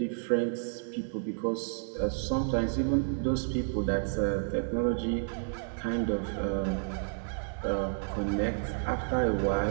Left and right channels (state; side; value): silent; left; digital silence